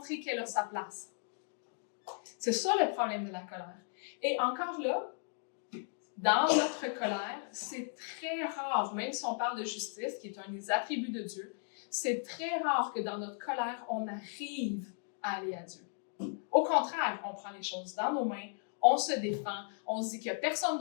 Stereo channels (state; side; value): silent; right; 54 dB below the other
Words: qu'elle a sa place. C'est ça le problème de la colère. Et encore là, dans notre colère, c'est très rare, même si on parle de justice, qui est un des attributs de Dieu, c'est très rare que dans notre colère, on arrive à aller à Dieu. Au contraire, on prend les choses dans nos mains, on se défend, on se dit qu'il n'y a personne